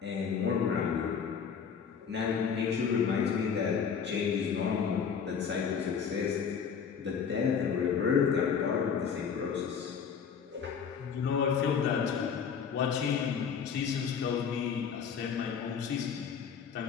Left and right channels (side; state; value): right; quieter; 6.8 dB